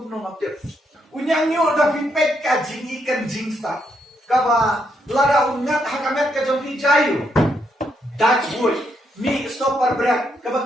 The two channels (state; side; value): normal; both; correlation 0.77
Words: no ngap te unyang yu da pi pek ka jingi kan jingsa ka ba lara ungat hakamet ka jom pi jayu Dutch wood mi stopper berat ka ba